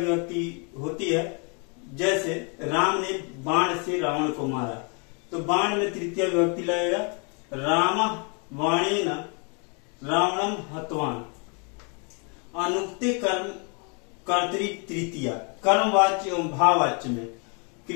होती है। जैसे राम ने बाण से रावण को मारा, तो बाण में तृतीय विभक्ति लगेगा। राम बाणेन रावणम हतवान। अनुक्ते कर्म कर्तरी तृतीया, कर्मवाच्य एवं भाववाच्य में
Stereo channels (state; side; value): quieter; right; 36.3 dB